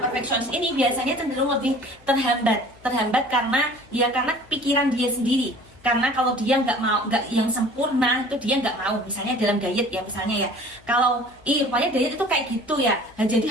perfeksionis ini biasanya cenderung lebih terhambat karena pikiran dia sendiri. Karena kalau dia nggak yang sempurna, itu dia nggak mau. Misalnya dalam diet ya, misalnya ya, kalau rupanya diet itu kayak gitu ya, nah, jadi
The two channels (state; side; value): noise; left; hum, 28 dB below the sound